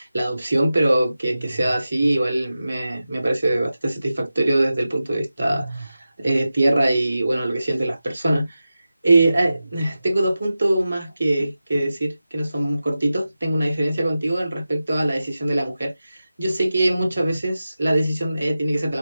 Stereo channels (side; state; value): both; inverted; correlation -0.93